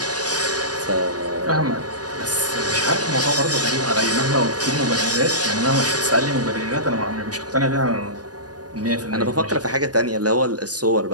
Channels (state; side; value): late; left; 0.68 ms